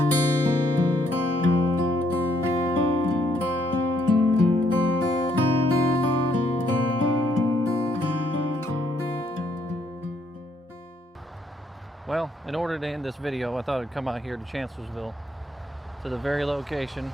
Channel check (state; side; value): normal; both; correlation 0.70